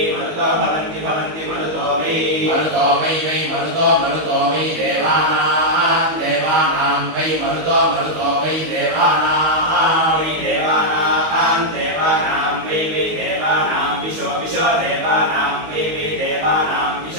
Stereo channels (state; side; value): late; left; 19 ms